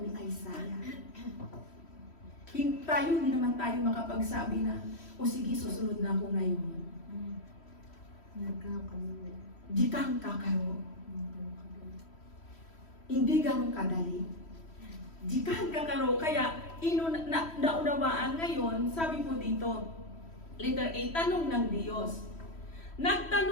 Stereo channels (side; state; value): right; late; 3.1 ms